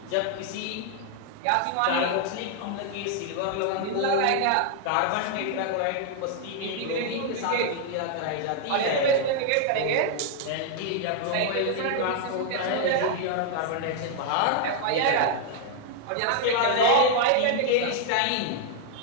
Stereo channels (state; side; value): different; both; correlation 0.00